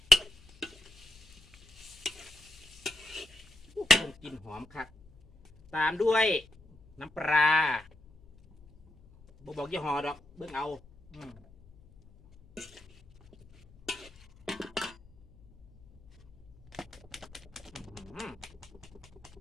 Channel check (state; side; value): noise; left; hum, 25 dB below the sound